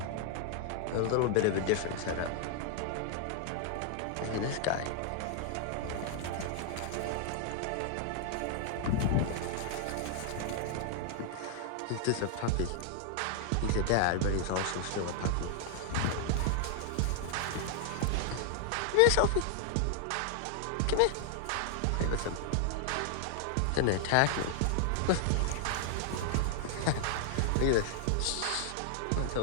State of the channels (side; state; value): both; different; correlation 0.00